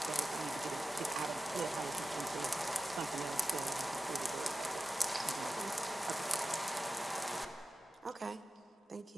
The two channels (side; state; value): both; normal; correlation 0.94